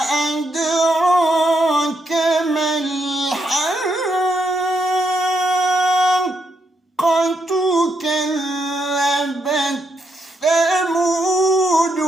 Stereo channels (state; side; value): normal; both; correlation 0.78